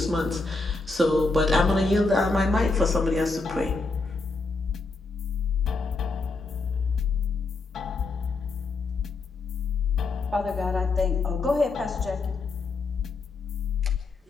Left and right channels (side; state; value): right; quieter; 3.7 dB